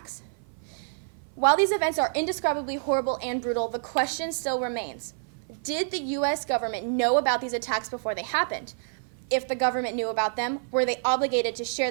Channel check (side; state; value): left; silent; 56 dB below the other